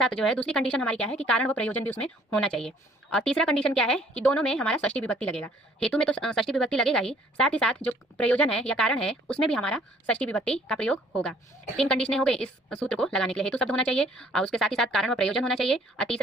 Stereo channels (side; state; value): both; normal; correlation 0.59